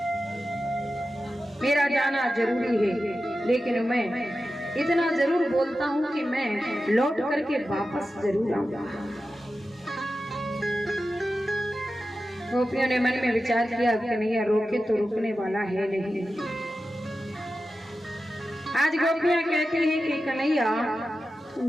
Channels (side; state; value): both; normal; correlation 0.92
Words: मेरा जाना जरूरी है, लेकिन मैं इतना जरूर बोलता हूँ कि मैं लौट करके वापस जरूर आऊंगा। गोपियों ने मन में विचार किया, कन्हैया रोके तो रुकने वाला है नहीं। आज गोपियां कहती हैं कि कन्हैया तुम